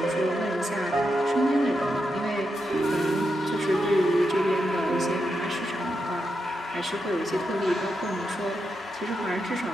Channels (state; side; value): normal; both; correlation 0.85